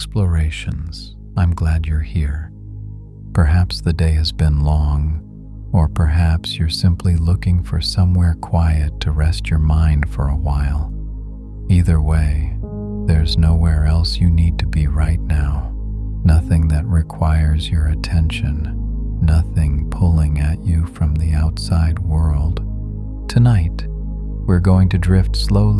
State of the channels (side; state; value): both; identical; correlation 1.00